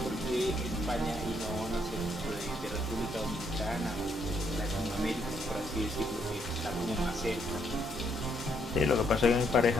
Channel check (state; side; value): normal; both; correlation 0.73